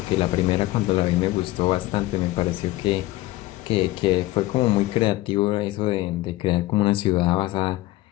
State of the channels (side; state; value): right; quieter; 17.7 dB